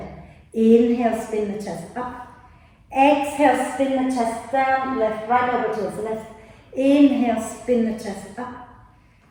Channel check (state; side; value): identical; both; correlation 1.00